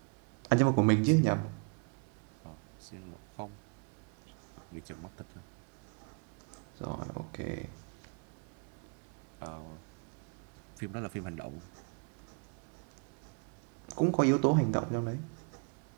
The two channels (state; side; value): quieter; left; 36.1 dB